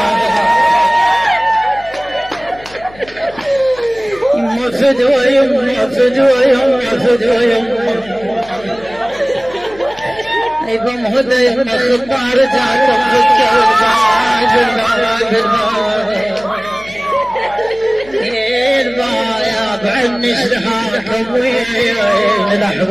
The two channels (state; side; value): noise; left; hum, 22 dB below the sound